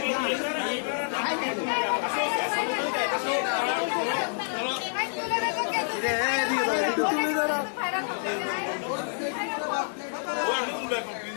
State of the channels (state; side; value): silent; right; digital silence